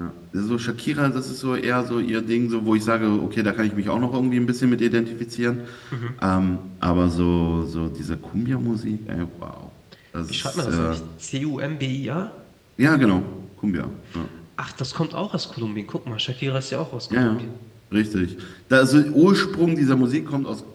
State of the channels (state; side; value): identical; both; correlation 1.00